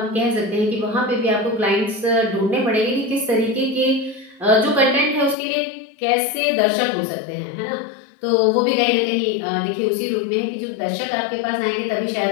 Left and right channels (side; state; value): right; drops out; at 5.4 s